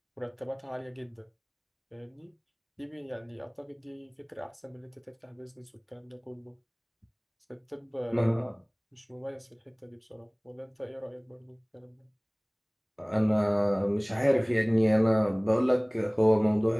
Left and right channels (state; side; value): identical; both; correlation 1.00